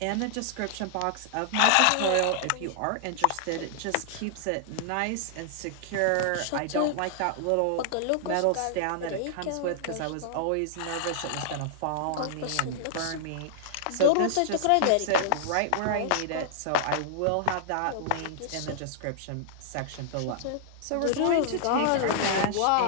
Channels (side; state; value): both; different; correlation -0.01